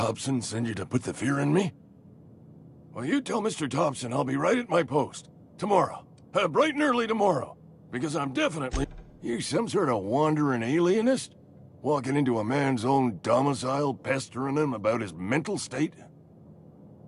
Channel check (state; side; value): identical; both; correlation 1.00